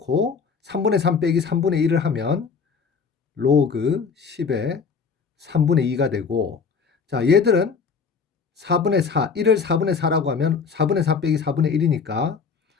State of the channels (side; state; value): right; quieter; 5.6 dB